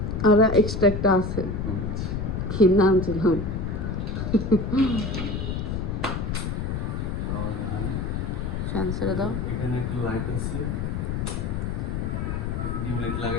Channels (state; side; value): noise; left; rumble, 2 dB below the sound